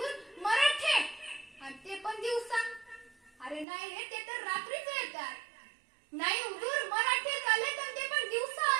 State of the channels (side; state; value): left; drops out; at 3.7 s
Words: मराठे. आणि ते पण दिवसा? अरे नाही रे, ते तर रात्रीच येतात. नाही हुजूर, मराठे आले तर ते पण दिवसा